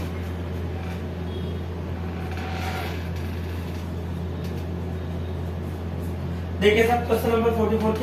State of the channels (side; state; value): both; identical; correlation 1.00